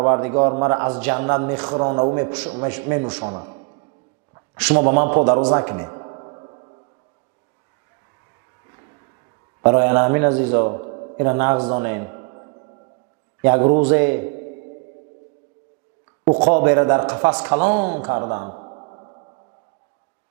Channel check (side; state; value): left; quieter; 31.1 dB